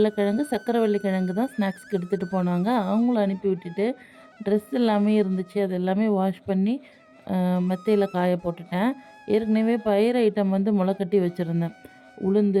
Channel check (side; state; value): both; identical; correlation 1.00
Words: சக்கரவள்ளி கிழங்கு தான் ஸ்நாக்ஸ்க்கு எடுத்துகிட்டு போனாங்க. அவங்களும் அனுப்பி விட்டுட்டு ட்ரெஸ் எல்லாமே இருந்துச்சு. அது எல்லாமே வாஷ் பண்ணி மெத்தையில் காய போட்டுட்டேன். ஏற்கனவே பயிர் ஐட்டம் வந்து முளைக்கட்டி வச்சுருந்தேன்.